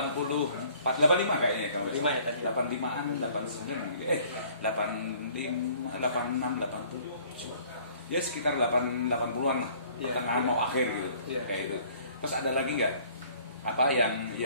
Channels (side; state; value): both; inverted; correlation -0.55